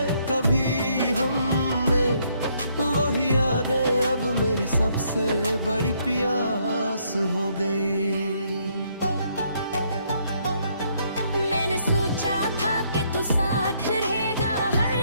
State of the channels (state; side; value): inverted; both; correlation -0.70